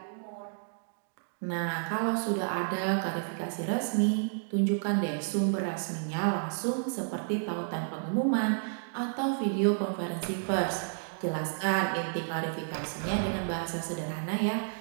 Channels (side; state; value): left; silent; digital silence